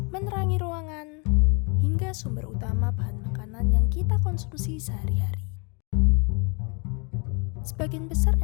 menerangi ruangan, hingga sumber utama bahan makanan yang kita konsumsi sehari-hari. Sebagian besar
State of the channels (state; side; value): quieter; right; 33.3 dB